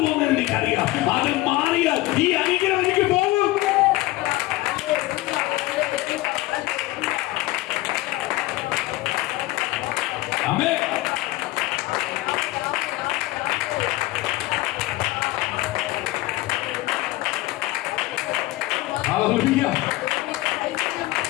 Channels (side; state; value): right; quieter; 18.6 dB